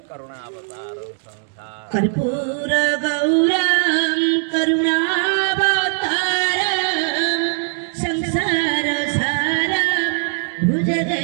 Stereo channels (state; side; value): silent; left; 60 dB below the other